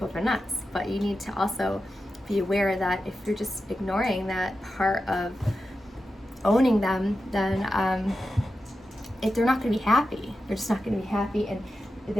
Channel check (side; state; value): both; normal; correlation 0.91